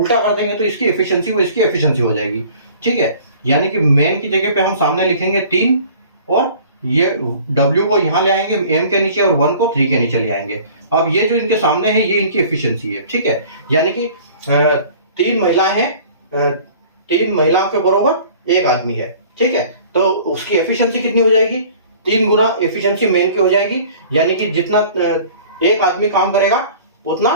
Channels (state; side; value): inverted; both; correlation -0.48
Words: कर देंगे तो इसकी एफिशिएंसी वो इसकी एफिशिएंसी हो जाएगी। ठीक है, यानी कि मैन की जगह पे हम सामने लिखेंगे 3 और ये W को यहाँ ले आएंगे M के नीचे और 1 को 3 के नीचे ले आएंगे। अब ये जो इनके सामने है ये इनकी एफिशिएंसी है। ठीक है, यानी कि 3 महिलाएं हैं, 3 महिलाओं के बराबर 1 आदमी है। ठीक है, तो उसकी एफिशिएंसी कितनी हो जाएगी? 3 गुना एफिशिएंसी मेन की हो जाएगी। यानी कि जितना 1 आदमी काम करेगा उतना